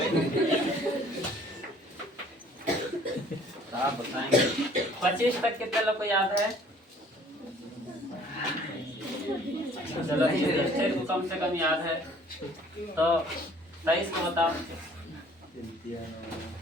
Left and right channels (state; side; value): normal; both; correlation 0.55